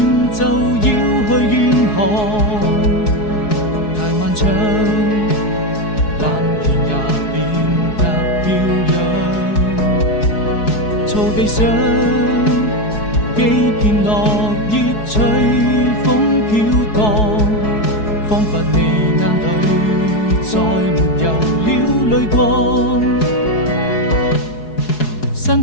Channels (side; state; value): right; late; 4.7 ms